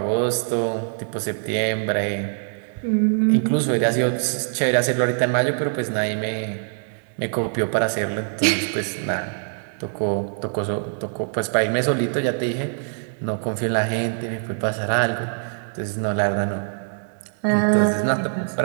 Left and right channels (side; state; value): left; silent; digital silence